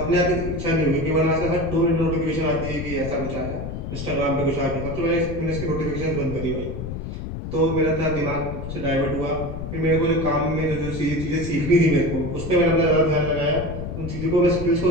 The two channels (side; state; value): left; noise; rumble, 7 dB below the sound